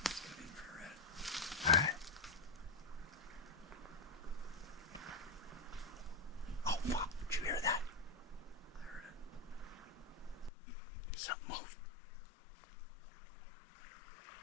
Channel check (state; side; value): drops out; right; at 10.5 s